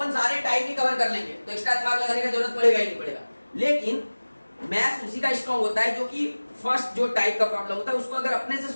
सारे टाइप ही कवर कर लेंगे, तो एक्स्ट्रा दिमाग लगाने की जरूरत पड़ेगा ही नहीं पड़ेगा। लेकिन मैथ्स उसी का स्ट्रॉन्ग होता है जो कि फर्स्ट जो टाइप का प्रॉब्लम होता है उसको अगर अपने से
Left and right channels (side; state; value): both; inverted; correlation -1.00